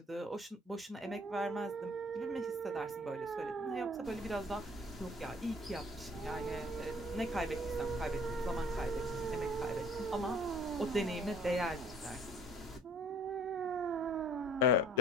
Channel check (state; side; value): normal; both; correlation 0.52